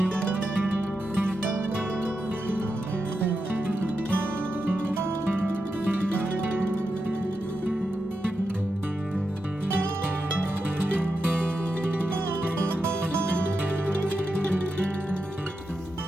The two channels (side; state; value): both; normal; correlation 0.87